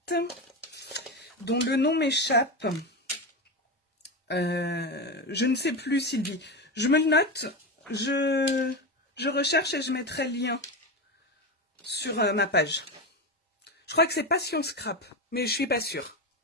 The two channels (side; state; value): both; normal; correlation 0.17